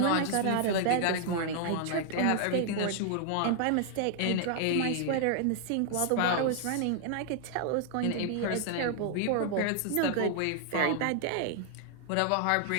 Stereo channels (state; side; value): different; both; correlation 0.00